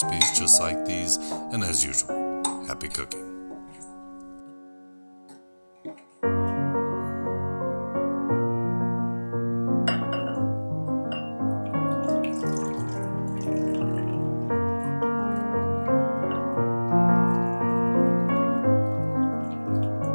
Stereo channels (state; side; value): inverted; both; correlation -1.00